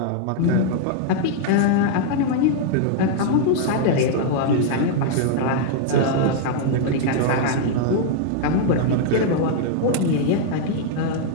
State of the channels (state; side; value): different; both; correlation -0.01